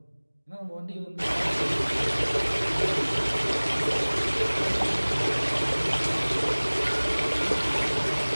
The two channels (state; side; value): inverted; both; correlation -1.00